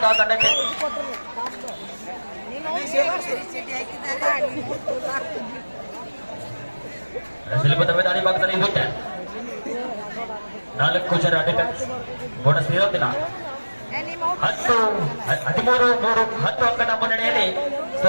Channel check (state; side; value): inverted; both; correlation -1.00